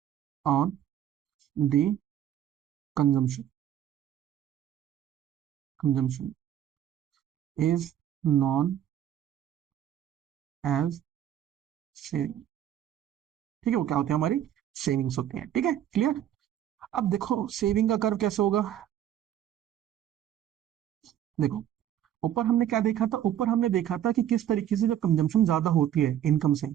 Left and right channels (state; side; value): quieter; left; 10.9 dB